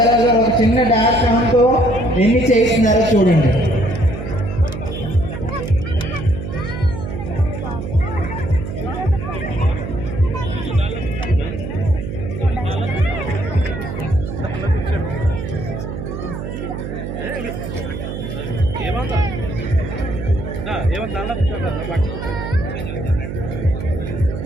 గారు ఒక చిన్న డాగ్ తో ఎన్ని చేస్తున్నారో చూడండి.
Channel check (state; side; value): noise; right; hum, 6 dB below the sound